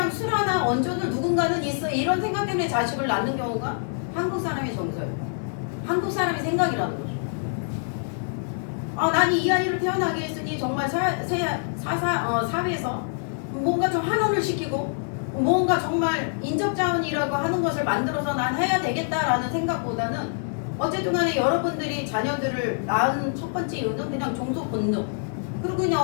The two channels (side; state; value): right; silent; digital silence